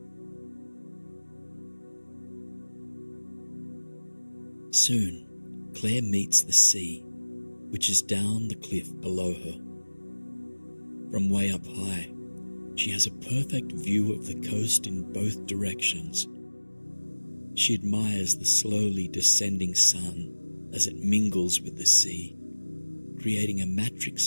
Soon, Claire meets the sea, which is down the cliff below her. From way up high, she has a perfect view of the coast in both directions. She admires the slowly descending sun as it mingles with the sea, creating a matrix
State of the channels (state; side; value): inverted; both; correlation -1.00